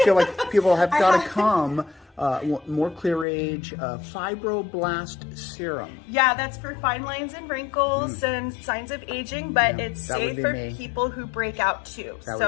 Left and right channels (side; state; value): right; drops out; at 3.2 s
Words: like people have got to come. More Craige Fibroblast Serum. Yeah, that's for fine lines and wrinkles and signs of aging, but it's safe for people who break out too.